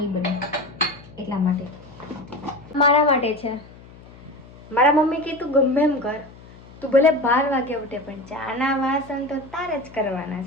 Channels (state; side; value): noise; left; hum, 21 dB below the sound